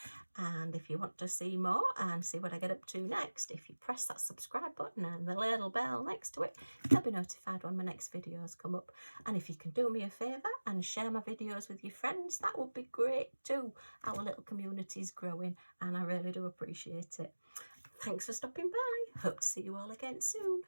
and if you want to see more and see what I get up to next, if you press that subscribe button and the little bell next to it, you'll be notified when my next videos come up. And if you can do me a favour and share my videos with your friends, that would be great too. Our little community is growing and I really do appreciate it. Thanks for stopping by. Hope to see you all again soon.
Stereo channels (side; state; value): both; inverted; correlation -1.00